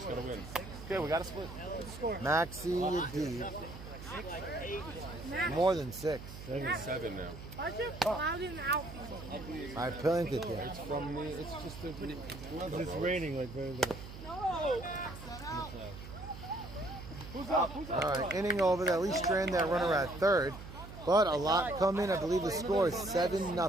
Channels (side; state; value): right; noise; hum, 12 dB below the sound